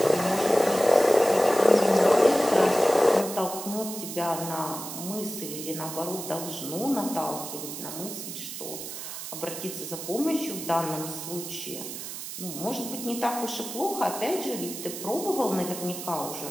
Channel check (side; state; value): right; noise; hiss, 8 dB below the sound